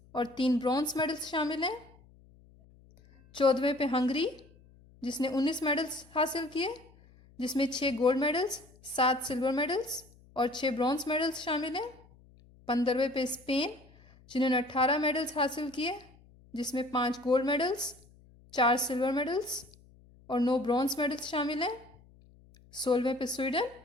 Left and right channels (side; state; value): left; noise; hum, 26 dB below the sound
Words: और 3 ब्रॉन्ज मेडल्स शामिल हैं। 14वें पे हंगरी, जिसने 19 मेडल्स हासिल किए, जिसमें 6 गोल्ड मेडल्स, 7 सिल्वर मेडल्स और 6 ब्रॉन्ज मेडल्स शामिल हैं। 15वें पे स्पेन, जिन्होंने 18 मेडल्स हासिल किए, जिसमें 5 गोल्ड मेडल्स, 4 सिल्वर मेडल्स और 9 ब्रॉन्ज मेडल्स शामिल हैं। 16वें पे स्वीडन,